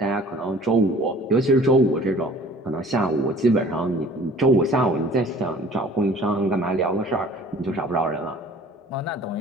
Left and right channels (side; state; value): both; normal; correlation 0.49